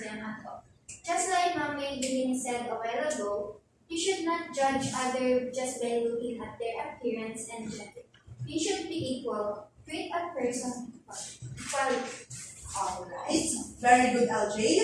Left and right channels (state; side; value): identical; both; correlation 1.00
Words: at all. Just like Mami Eileen said a while ago, you should not judge others just by looking at their appearance and gender. You should be equal. Treat a person equally. Alright. Very good, LJ.